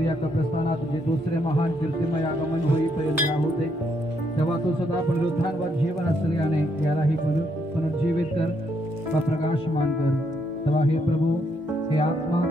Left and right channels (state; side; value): normal; both; correlation 0.74